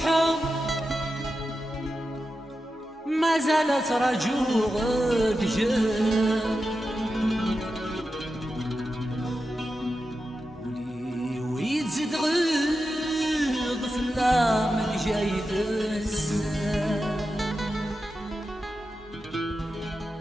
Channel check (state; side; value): normal; both; correlation 0.90